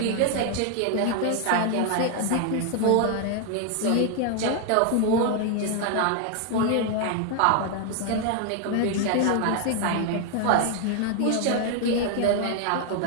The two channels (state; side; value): different; both; correlation 0.00